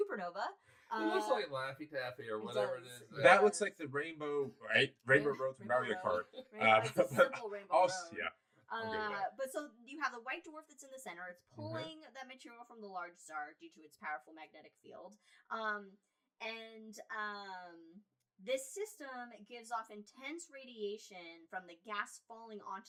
It looks like Laffy Taffy or whatever it is. That looks like the rainbow, right? Rainbow Road from Mario Kart. It's a simple rainbow road. Yeah. But so you have the white dwarf that's in the center. It's pulling that material from the large star due to its powerful magnetic field. This system gives off intense radiation from the gas falling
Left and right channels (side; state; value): both; identical; correlation 1.00